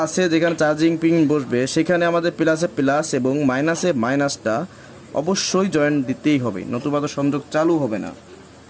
আছে যেখানে চার্জিং পিন বসবে, সেখানে আমাদের প্লাসে প্লাস এবং মাইনাসে মাইনাসটা অবশ্যই জয়েন্ট দিতেই হবে, নতুবা তো সংযোগ চালু হবে না।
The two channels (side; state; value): both; identical; correlation 1.00